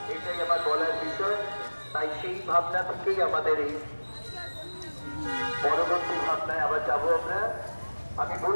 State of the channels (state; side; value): inverted; both; correlation -1.00